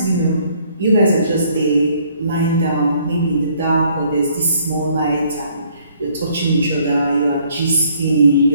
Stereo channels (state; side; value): inverted; both; correlation -0.64